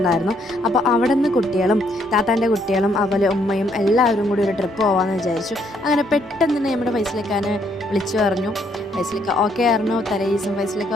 അപ്പോൾ അവിടെ നിന്ന് കുട്ടികളും താത്താൻ്റെ കുട്ടികളും അതുപോലെ ഉമ്മയും എല്ലാവരും കൂടി ഒരു ട്രിപ്പ് പോകാമെന്ന് വിചാരിച്ചു. അങ്ങനെ പെട്ടെന്ന് തന്നെ നമ്മുടെ ഫൈസലിക്കാനെ വിളിച്ചു പറഞ്ഞു. ഫൈസലിക്ക ഓക്കെ ആയിരുന്നു, തലേദിവസം ഫൈസലിക്ക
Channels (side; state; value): both; normal; correlation 0.70